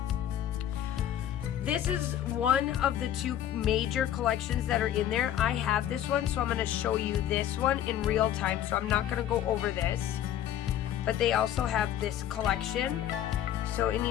This is one of the two major collections that are in there. I have this one, so I'm going to show you this one in real time. So I'm not going to go over this. But they also have this collection. So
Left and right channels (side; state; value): right; quieter; 11.1 dB